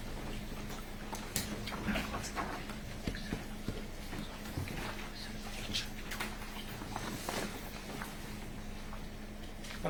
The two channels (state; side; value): identical; both; correlation 1.00